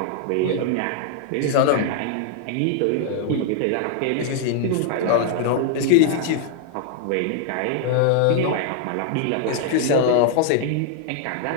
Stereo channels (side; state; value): both; different; correlation 0.00